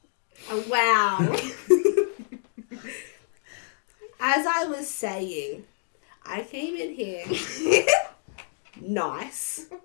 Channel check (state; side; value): silent; right; 60 dB below the other